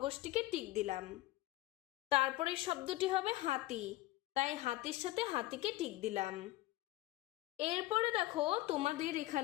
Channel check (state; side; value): quieter; right; 17.5 dB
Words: টিক দিলাম। তারপরের শব্দটি হবে হাতি, তাই হাতির সাথে হাতিকে টিক দিলাম। এরপরে দেখো তোমাদের